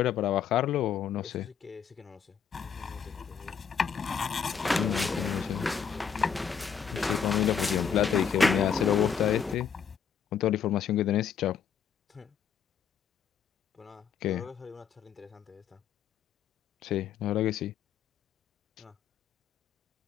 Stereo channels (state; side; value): quieter; right; 7.3 dB